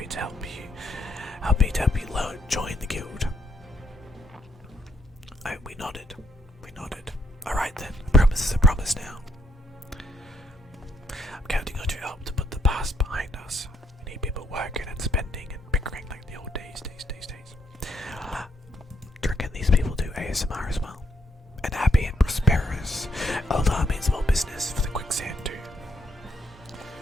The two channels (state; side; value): normal; both; correlation 0.74